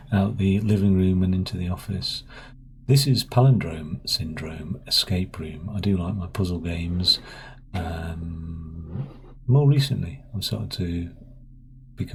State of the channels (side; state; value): both; identical; correlation 1.00